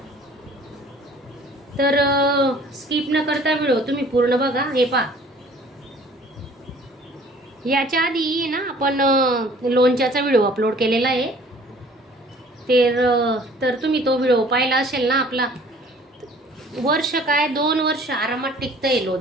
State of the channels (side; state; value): both; normal; correlation 0.52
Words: तर स्किप न करता व्हिडिओ तुम्ही पूर्ण बघा. हे पहा, याच्या आधी ना आपण लोणच्याचा व्हिडिओ अपलोड केलेला आहे. तर तुम्ही तो व्हिडिओ पाहिला असेल ना. आपला वर्ष काय 2 वर्ष आरामात टिकतंय